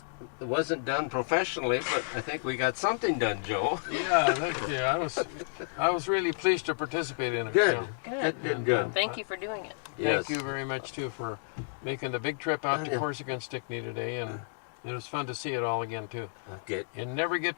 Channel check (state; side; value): silent; right; digital silence